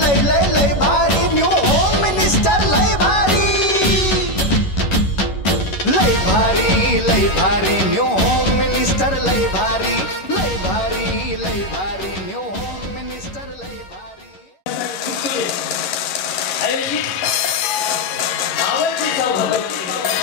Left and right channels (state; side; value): late; right; 11 ms